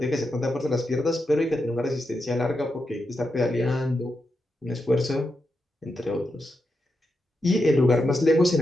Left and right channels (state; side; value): normal; both; correlation 0.86